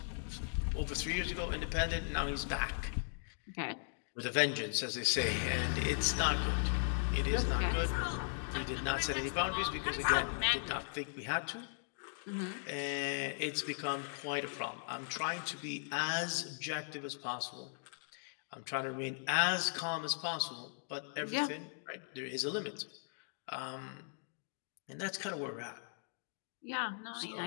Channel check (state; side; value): silent; right; digital silence